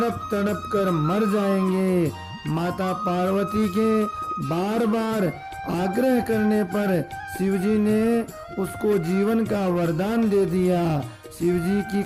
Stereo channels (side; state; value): both; identical; correlation 1.00